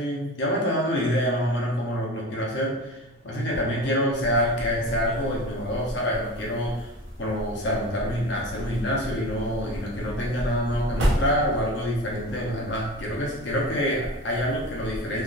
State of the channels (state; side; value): normal; both; correlation 0.33